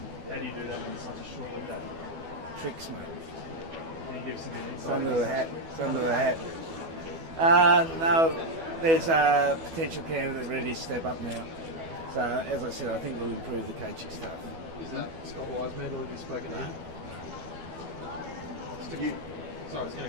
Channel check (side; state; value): left; late; 12 ms